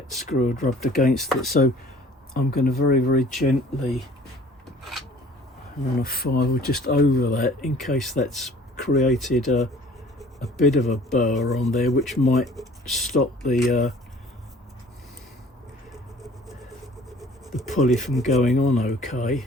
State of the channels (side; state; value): both; normal; correlation 0.51